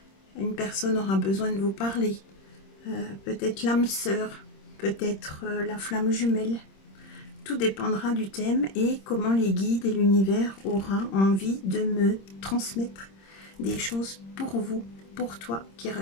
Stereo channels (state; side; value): late; right; 26 ms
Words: Une personne aura besoin de vous parler. Peut-être l'âme sœur, peut-être la flamme jumelle. Tout dépendra du thème et comment les guides et l'univers aura envie de me transmettre des choses pour vous, pour toi qui